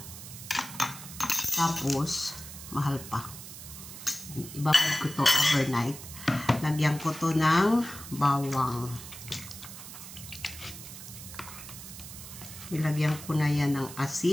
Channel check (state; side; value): noise; right; hiss, 13 dB below the sound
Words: Tapos, mahal pa. Ibabad ko to overnight. Lagyan ko to ng bawang. Ilagyan ko na yan ng